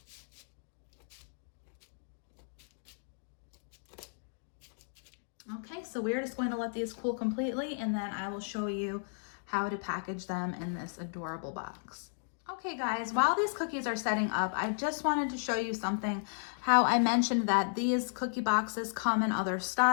Okay, so we're just going to let these cool completely, and then I will show you how to package them in this adorable box. Okay guys, while these cookies are setting up, I just wanted to show you something. How I mentioned that these cookie boxes come in other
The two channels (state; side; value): silent; right; digital silence